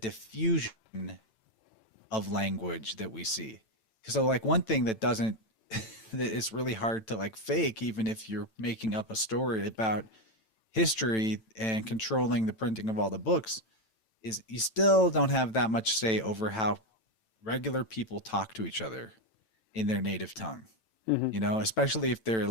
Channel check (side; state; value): right; late; 9.0 ms